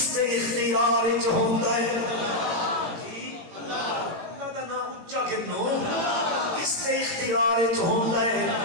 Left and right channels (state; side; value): late; left; 17 ms